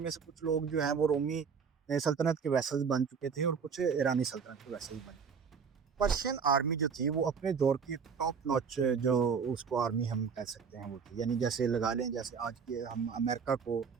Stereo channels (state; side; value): quieter; left; 6.1 dB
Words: میں سے کچھ لوگ جو ہیں وہ رومی سلطنت کے ویسل بن چکے تھے، اور کچھ ایرانی سلطنت کے ویسل بن چکے تھے۔ پرشین آرمی جو تھی وہ اپنے دور کی ٹاپ نوچ جو اس کو آرمی ہم کہہ سکتے ہیں وہ تھی، یعنی جیسے لگا لیں جیسے آج کے ہم امریکہ کو،